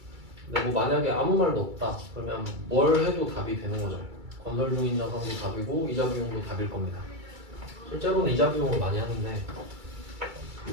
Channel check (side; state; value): left; late; 2.3 ms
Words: 근데 뭐 만약에 아무 말도 없다 그러면 뭘 해도 답이 되는 거죠. 건설 중인 자산도 답이고 이자 비용도 답일 겁니다. 실제로는 이자 비용을 많이 하는데,